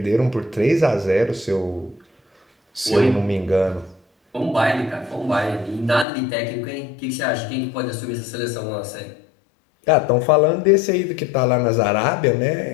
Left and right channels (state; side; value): drops out; right; at 6.1 s